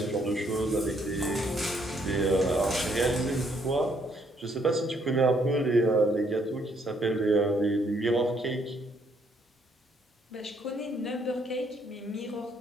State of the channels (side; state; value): both; normal; correlation 0.69